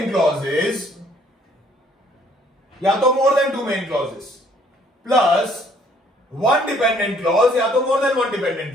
clauses या तो more than two main clauses plus one dependent clause या तो more than one dependent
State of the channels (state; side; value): normal; both; correlation 0.62